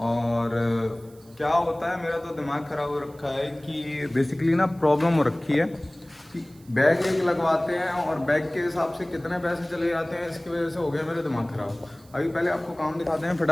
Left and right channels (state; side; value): noise; right; hiss, 27 dB below the sound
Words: क्या होता है। मेरा तो दिमाग ख़राब हो रखा है कि बेसिकली ना प्रॉब्लम हो रखी है कि बैग एक लगवाते हैं और बैग के हिसाब से कितने पैसे चले जाते हैं। इसकी वजह से हो गया मेरा दिमाग ख़राब। अभी पहले आपको काम दिखाते हैं